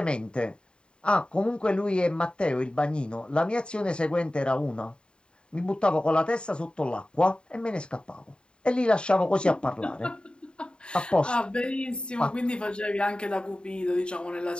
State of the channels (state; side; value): late; right; 0.052 ms